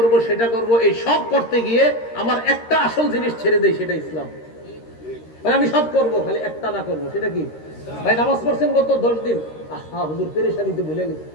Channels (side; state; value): right; late; 13 ms